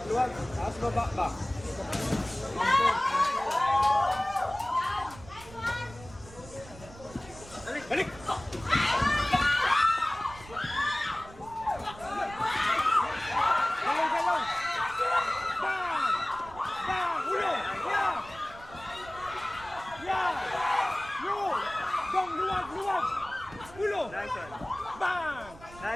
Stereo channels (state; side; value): noise; right; rumble, 19 dB below the sound